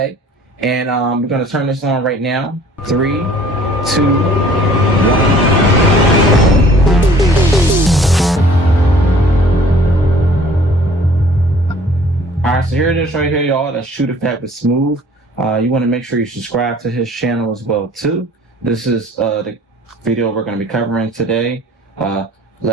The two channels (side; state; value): both; normal; correlation 0.53